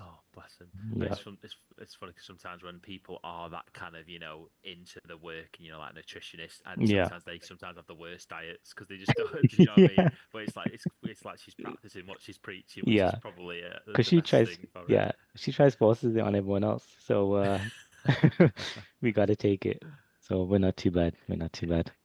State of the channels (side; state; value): both; identical; correlation 1.00